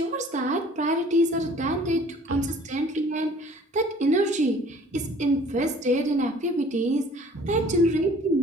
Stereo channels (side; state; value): both; normal; correlation 0.52